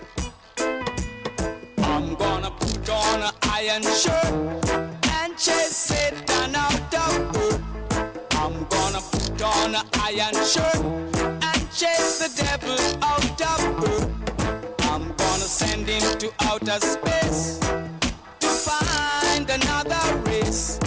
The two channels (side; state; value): both; identical; correlation 1.00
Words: I'm gonna put on an iron shirt and chase Satan out of earth. I'm gonna put on an iron shirt and chase the devil out of earth. I'm gonna send him to outer space to find another race.